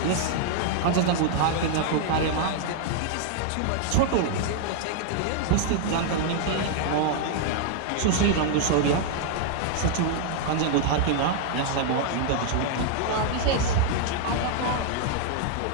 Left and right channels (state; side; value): different; both; correlation 0.00